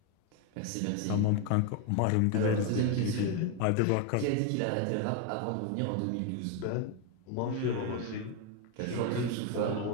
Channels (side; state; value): both; different; correlation 0.01